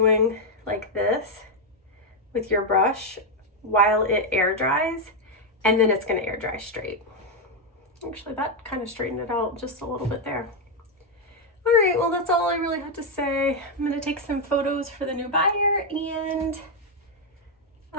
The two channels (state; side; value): normal; both; correlation 0.02